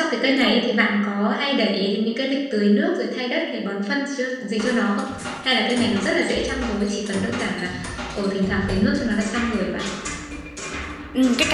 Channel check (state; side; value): identical; both; correlation 1.00